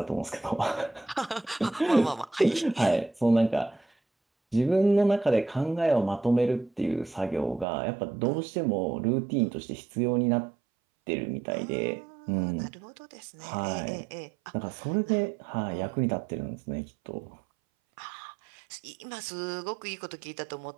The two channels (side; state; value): left; drops out; at 7.7 s